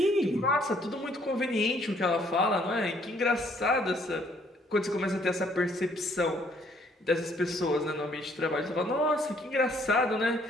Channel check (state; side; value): normal; both; correlation 0.65